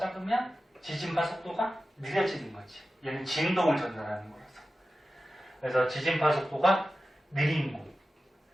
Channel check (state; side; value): normal; both; correlation 0.94